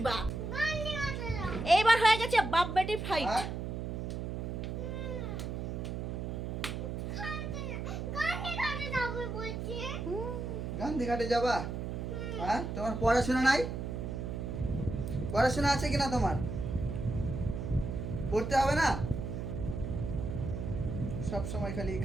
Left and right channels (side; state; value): right; noise; hum, 4 dB below the sound